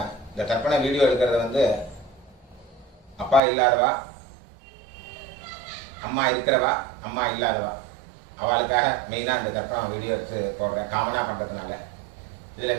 இந்த தர்ப்பண வீடியோ எடுக்கிறது வந்து அப்பா இல்லாதவா, அம்மா இருக்கிறவா, அம்மா இல்லாதவா அவளுக்காக மெயினாக இந்த தர்ப்பணம் வீடியோ எடுத்து போடுறேன், காமனாக பண்ணுறதுனால. இதில்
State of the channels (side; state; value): left; drops out; at 3.4 s